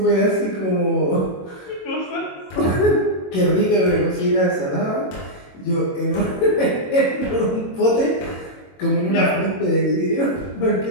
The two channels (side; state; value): right; late; 22 ms